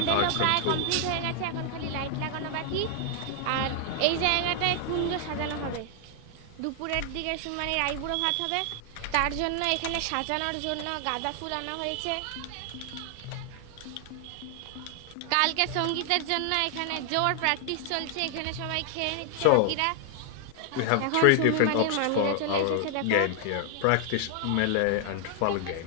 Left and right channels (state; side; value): different; both; correlation 0.00